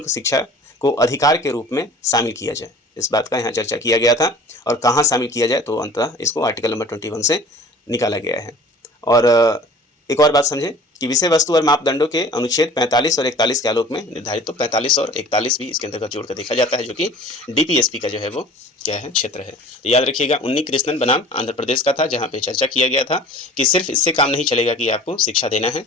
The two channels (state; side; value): normal; both; correlation 0.45